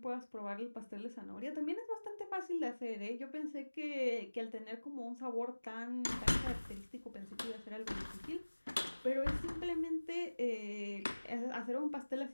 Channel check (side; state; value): both; inverted; correlation -1.00